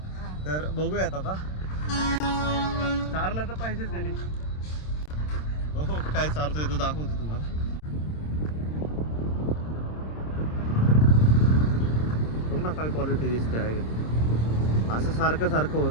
तर बघूयात आता. चारलं तर पाहिजेच त्यांनी. हो काय चारतोय तो दाखवतो तुम्हाला. बघ ना काय क्वालिटी दिसते आहे. असं सारखं सारखं होत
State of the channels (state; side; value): late; right; 26 ms